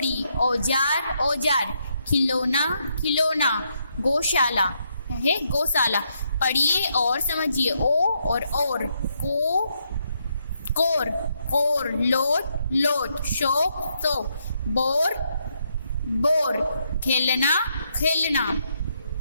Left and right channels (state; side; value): inverted; both; correlation -0.77